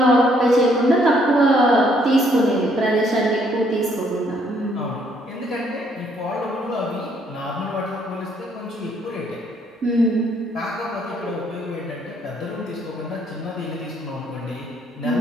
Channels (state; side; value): normal; both; correlation 0.68